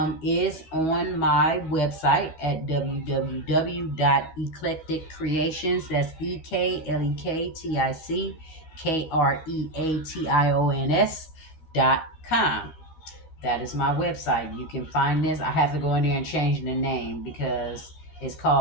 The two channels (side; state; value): right; late; 12 ms